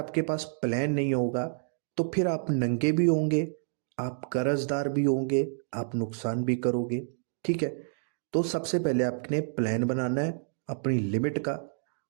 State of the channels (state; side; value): silent; left; digital silence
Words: पास प्लान नहीं होगा तो फिर आप नंगे भी होंगे, आप कर्जदार भी होंगे, आप नुकसान भी करोगे, ठीक है। तो सबसे पहले आपने प्लान बनाना है अपनी लिमिट का